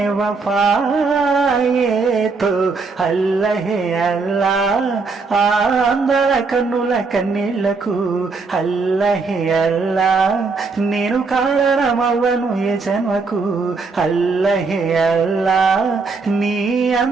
వఫాయే తో అల్లహే అల్లా. అందర కన్నుల కన్నీళ్లకు అల్లహే అల్లా, నేను కారణమవ్వను ఏ జన్మకు అల్లహే అల్లా. నీ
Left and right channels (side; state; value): left; quieter; 4.3 dB